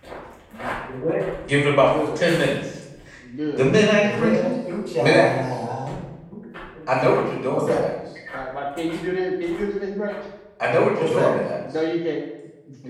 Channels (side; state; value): both; identical; correlation 1.00